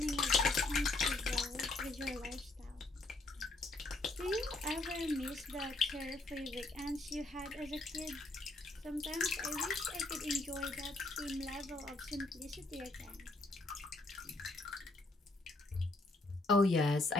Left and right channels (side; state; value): right; quieter; 3.0 dB